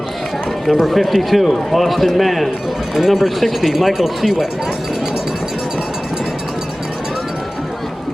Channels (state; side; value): normal; both; correlation 0.98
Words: number 52, Austin Mann, and number 60, Michael Seawick.